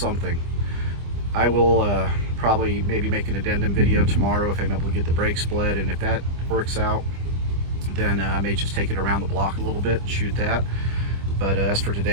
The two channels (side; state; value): left; late; 25 ms